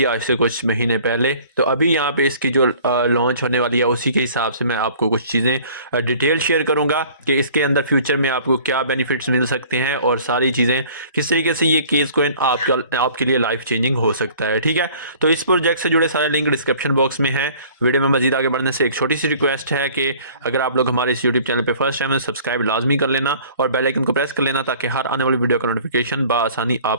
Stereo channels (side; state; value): both; inverted; correlation -0.51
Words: आज से कुछ महीने पहले, तो अभी यहाँ पे इसकी जो लॉन्च होने वाली है उसी के हिसाब से मैं आपको कुछ चीज़ें डिटेल शेयर करूँगा कि इसके अंदर फ्यूचर में आपको क्या बेनिफिट्स मिल सकते हैं और सारी चीज़ें किस तरीके से ये केएस कोइन आपके लिए लाइफ चेंजिंग हो सकता है। ठीक है, तो इस प्रोजेक्ट से जुड़े सारे लिंक डिस्क्रिप्शन बॉक्स में है। वीडियो में मजीद आगे बढ़ने से एक छोटी सी रिक्वेस्ट है कि अगर आप लोग हमारे इस यूट्यूब चैनल पे फर्स्ट टाइम है, सब्सक्राइब लाजमी कर लेना और बेल आइकन को प्रेस कर लेना ताकि हर आने वाली वीडियो का नोटिफिकेशन बआसानी